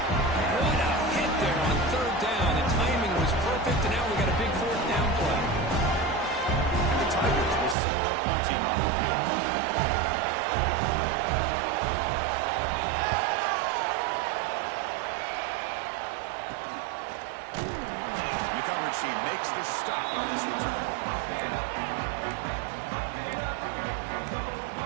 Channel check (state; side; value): drops out; left; at 7.8 s